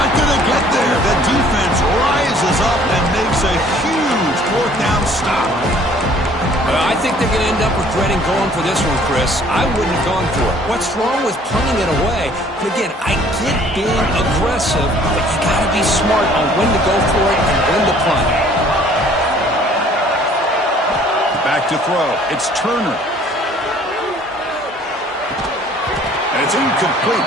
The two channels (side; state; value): both; normal; correlation 0.56